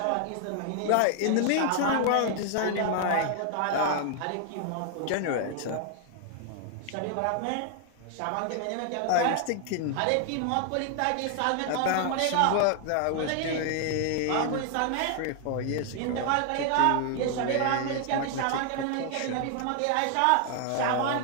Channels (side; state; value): both; different; correlation 0.00